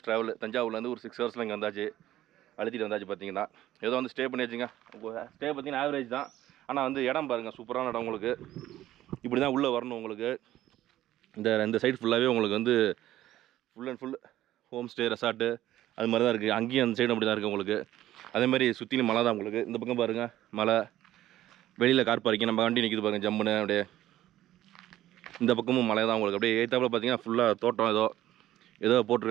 ட்ராவல். தஞ்சாவூர்லேருந்து ஒரு 6 ஹவர்ஸில் இங்கே வந்தாச்சு, அழுத்திட்டு வந்தாச்சு. பார்த்தீங்கன்னா ஏதோ வந்து ஸ்டே பண்ணி வச்சுங்க. ஸ்டே பார்த்தீங்கன்னா ஆவரேஜ் தான். ஆனால் வந்து இடம் பாருங்கள், சூப்பரான இடம் உங்களுக்கு. இப்படி தான் உள்ளே வரணும் உங்களுக்கு. இந்த சைடு ஃபுல்லாகவே உங்களுக்கு வந்து full and full home stay resort அது மாதிரி தான் இருக்குது. அங்கேயும் அந்த சைடு அப்படி தான் இருக்குது உங்களுக்கு. அதேமாதிரி சுற்றிலும் மலை தான் உங்களுக்கு. இந்த பக்கம் பாருங்கள் மலை, வெளியில் கார் பார்க்கிங், நம்ம வண்டி நிற்கிது பாருங்கள் ஜம்முன்னு அப்படியே. இந்த பக்கமும் மலை தான் உங்களுக்கு. அப்படியே ஏற்றாப்புல பார்த்தீங்கன்னா ஃபுல்லாக தோட்டம் ஏதோ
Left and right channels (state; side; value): quieter; left; 13.9 dB